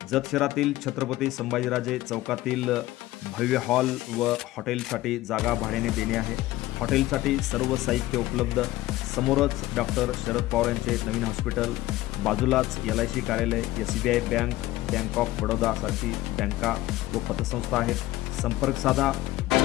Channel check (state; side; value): quieter; right; 16.8 dB